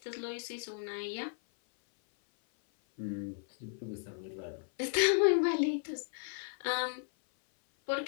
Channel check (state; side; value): silent; right; 55 dB below the other